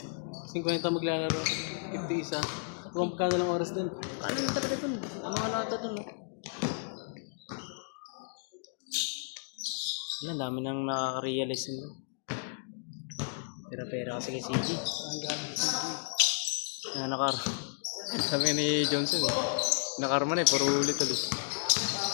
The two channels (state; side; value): silent; right; digital silence